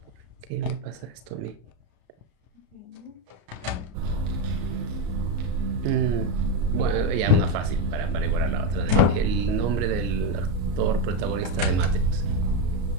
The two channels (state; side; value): late; left; 34 ms